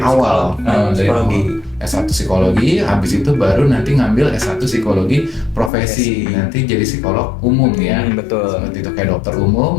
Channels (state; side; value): drops out; right; at 5.7 s